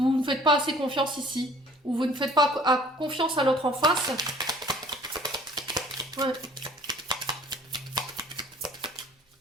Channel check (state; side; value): normal; both; correlation 0.52